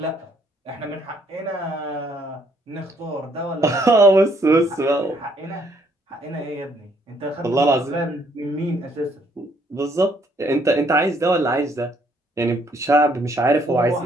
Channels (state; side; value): normal; both; correlation 0.67